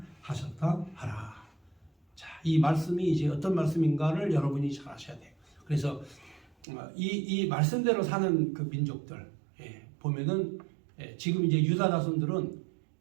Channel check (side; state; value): left; drops out; at 6.7 s